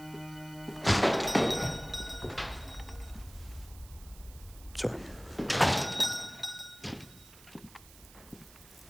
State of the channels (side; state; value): right; noise; hiss, 21 dB below the sound